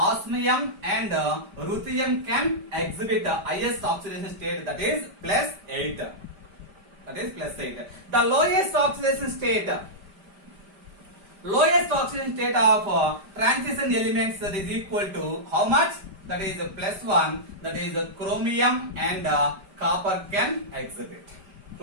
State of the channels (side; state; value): left; late; 5.1 ms